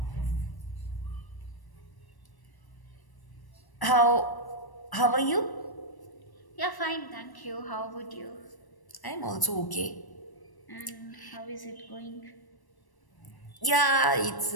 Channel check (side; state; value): right; late; 1.1 ms